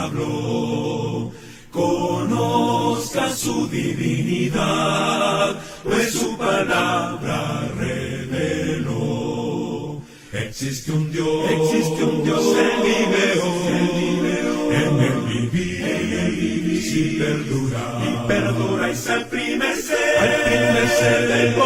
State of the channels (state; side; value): identical; both; correlation 1.00